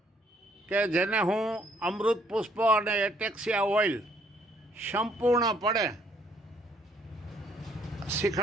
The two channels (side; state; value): both; normal; correlation 0.66